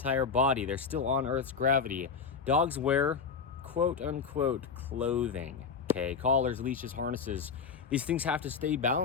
body. They're still on Earth's gravity. Dogs wear quote-unquote clothing, okay? Collars, leashes, harnesses. These things have to stay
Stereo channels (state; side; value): quieter; right; 5.7 dB